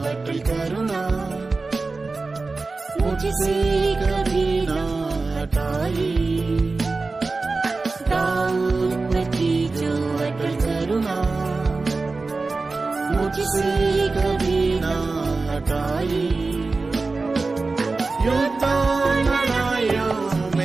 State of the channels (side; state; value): left; quieter; 3.8 dB